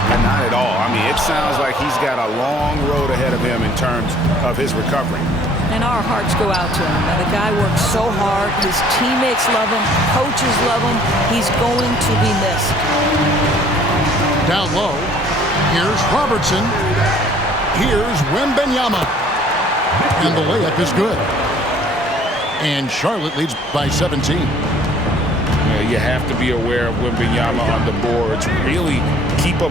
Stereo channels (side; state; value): both; normal; correlation 0.56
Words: Not at all. I mean, it sounds like he's got a long road ahead of him in terms of his recovery. And our hearts go out to him. Now, the guy works so hard. His teammates love him. Coaches love him. He's going to be missed. Down low, here's Robertson. Here's Wembanyama. And the layup is good. And Charlotte leads by 17. You have to be aware of Wembanyama on the boards. Really keep a